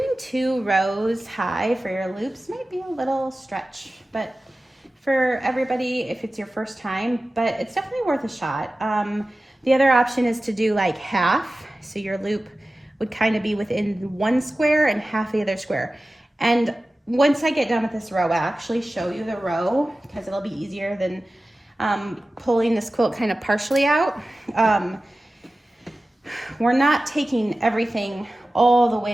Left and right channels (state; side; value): normal; both; correlation 0.96